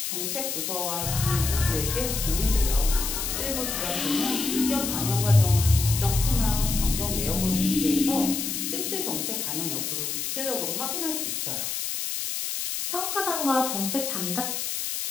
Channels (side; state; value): left; noise; hiss, 3 dB below the sound